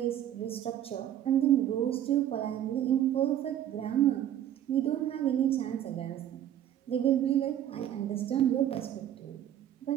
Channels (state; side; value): quieter; left; 11.2 dB